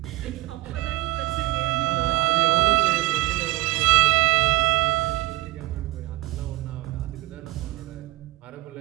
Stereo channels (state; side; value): quieter; left; 18.2 dB